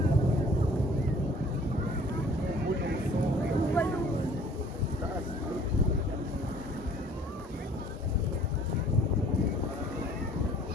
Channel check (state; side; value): normal; both; correlation 0.54